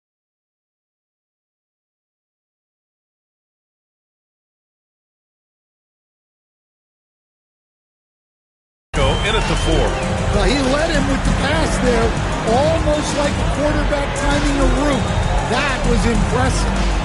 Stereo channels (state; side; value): identical; both; correlation 1.00